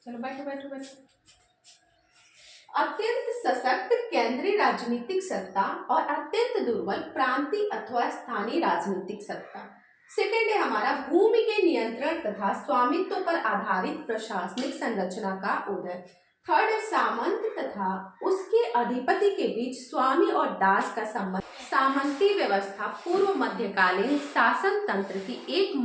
चलो बैठो बैठो बैठो। अत्यंत सशक्त केंद्रीय राजनीतिक सत्ता और अत्यंत दुर्बल प्रांतीय अथवा स्थानीय राजनीतिक सत्ता। सेकेंड है हमारा भूमि के नियंत्रण तथा स्वामित्व पर आधारित प्रशासनिक संरचना का उदय। थर्ड है सामंत तथा उसके अधिपति के बीच स्वामी और दास का संबंध। सामंती व्यवस्था पूर्व मध्यकालीन शासन तंत्र की एक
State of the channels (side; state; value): both; identical; correlation 1.00